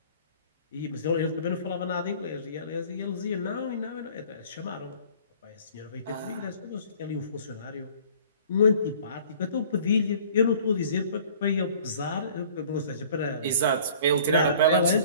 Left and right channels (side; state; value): both; inverted; correlation -0.50